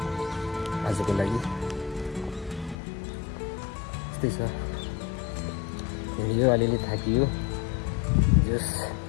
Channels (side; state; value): right; drops out; at 2.8 s